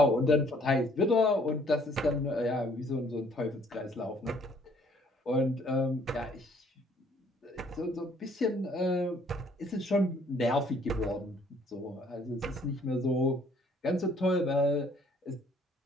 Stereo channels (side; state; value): both; normal; correlation 0.61